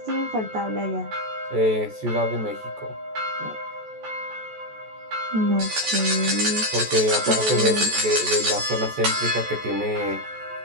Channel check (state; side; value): late; left; 14 ms